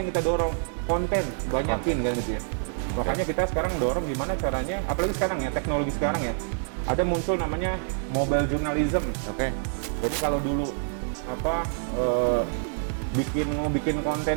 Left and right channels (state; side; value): silent; left; digital silence